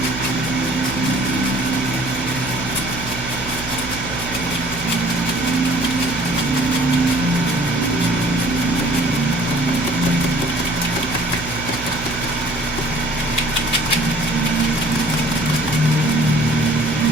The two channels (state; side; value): noise; right; hum, 14 dB below the sound